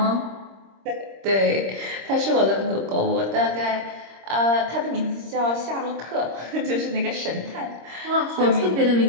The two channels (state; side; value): late; left; 26 ms